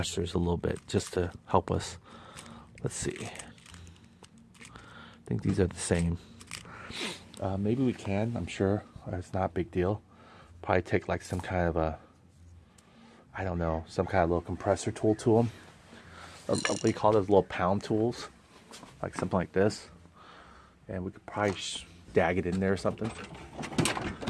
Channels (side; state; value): both; identical; correlation 1.00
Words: a little bit just to help us. Let's see. I think these are the same. Maybe we can. I'm sure it's not a big deal. Probably take like some kind of a, I don't know, some kind of little compressor tool to them. What do you call those little pound tools? Like something like this. And we could probably dag it in there or something.